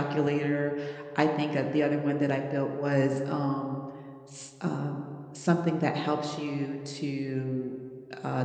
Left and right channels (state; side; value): identical; both; correlation 1.00